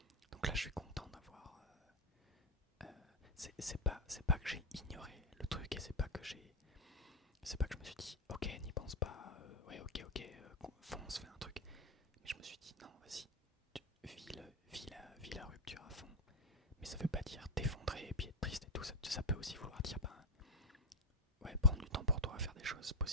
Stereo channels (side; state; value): both; normal; correlation 0.06